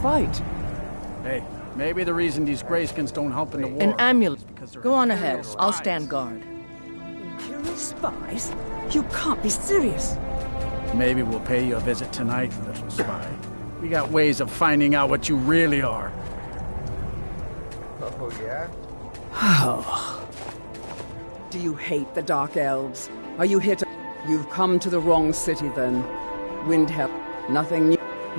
Hey, maybe the reason these Greyskins don't help in the war... An amulet. Because Go on ahead. I'll stand guard. Imperial spies? You can't be serious. Maybe we'll pay you a visit tonight, little spy. We got ways of finding out what you really are. Oh, yeah? Oh. Do you hate the Dark Elves? Are you here to... You've come to the wrong city, then. Windhelm. Nothing new.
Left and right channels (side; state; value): both; inverted; correlation -1.00